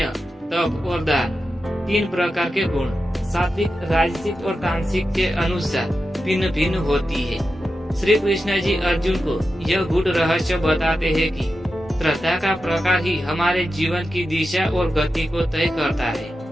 तप और दान, तीन प्रकार के गुण सात्विक, राजसिक और तामसिक के अनुसार भिन्न भिन्न होती है। श्री कृष्ण जी अर्जुन को यह गूढ़ रहस्य बताते हैं कि श्रद्धा का प्रकार ही हमारे जीवन की दिशा और गति को तय करता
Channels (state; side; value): normal; both; correlation 0.90